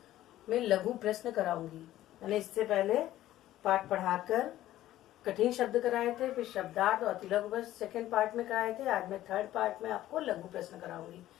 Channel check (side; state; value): right; quieter; 14.1 dB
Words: में लघु प्रश्न कराऊंगी। मैंने इससे पहले पाठ पढ़ाकर कठिन शब्द कराए थे, फिर शब्दार्थ और अतिलघु प्रश्न सेकेंड पार्ट में कराए थे। आज मैं थर्ड पार्ट में आपको लघु प्रश्न कराऊंगी।